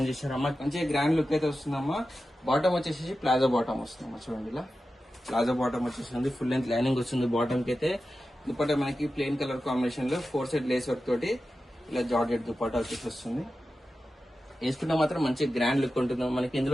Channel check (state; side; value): normal; both; correlation 0.93